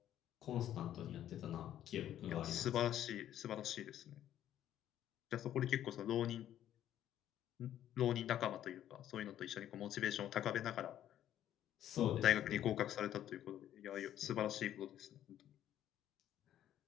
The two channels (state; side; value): quieter; right; 11.5 dB